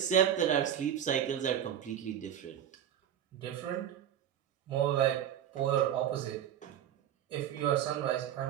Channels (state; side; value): quieter; left; 10.1 dB